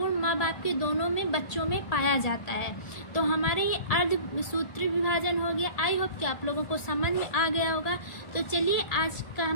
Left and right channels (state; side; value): late; right; 1.8 ms